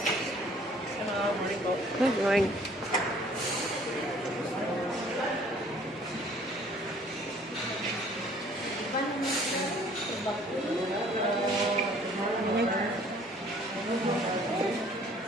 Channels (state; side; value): normal; both; correlation 0.56